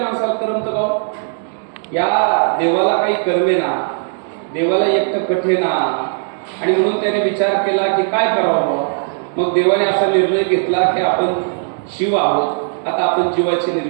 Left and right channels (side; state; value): left; silent; 64 dB below the other